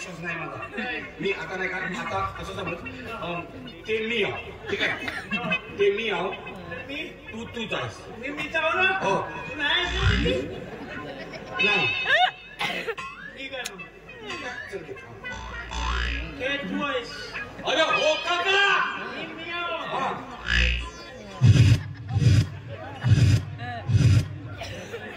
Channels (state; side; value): identical; both; correlation 1.00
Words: नाही माझा. मी आता नाही का आता असं समज ते मी आहो. ठीक आहे. ते मी आहो. तू तूच आहेस. मी आहो ना. हो नाही चल घे. हे तू आहेस. अरे हो काका. मी आहो.